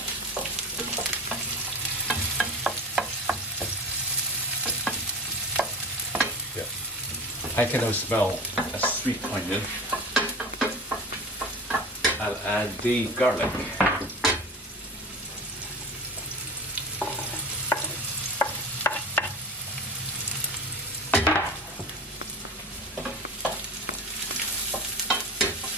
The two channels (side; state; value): both; normal; correlation 0.34